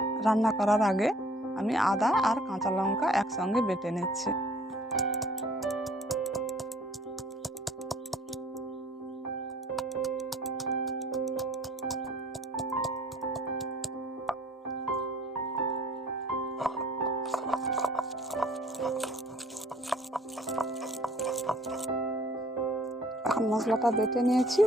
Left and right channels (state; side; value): normal; both; correlation 0.55